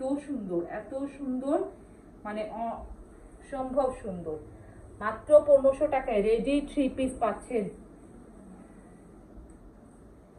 সুন্দর, এত সুন্দর, মানে অসম্ভব সুন্দর। মাত্র 1500 টাকায় রেডি 3 পিস পাচ্ছেন।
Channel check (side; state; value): both; identical; correlation 1.00